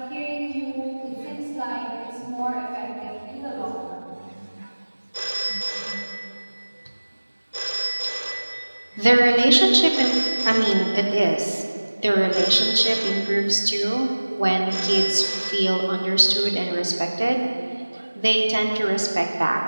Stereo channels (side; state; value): both; inverted; correlation -1.00